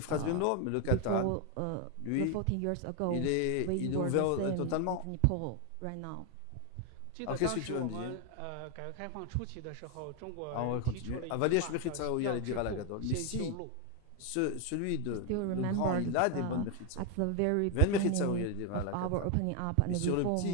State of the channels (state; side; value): different; both; correlation 0.01